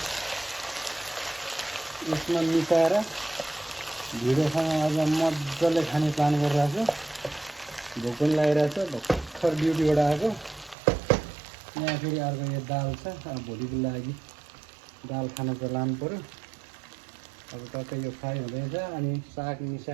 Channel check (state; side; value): drops out; left; at 10.8 s